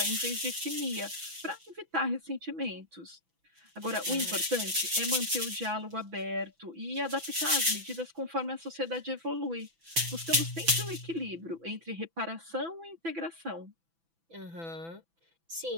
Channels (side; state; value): left; late; 6.0 ms